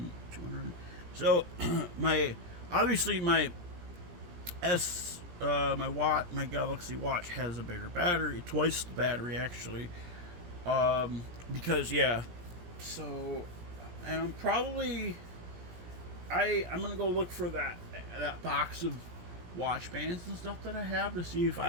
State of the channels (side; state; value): left; late; 17 ms